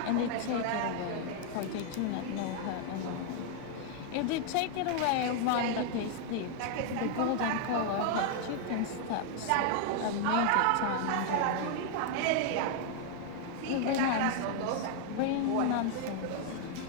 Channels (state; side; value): different; both; correlation 0.00